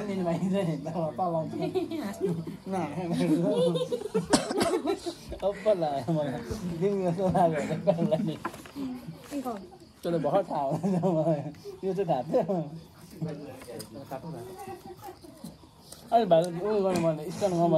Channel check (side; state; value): both; identical; correlation 1.00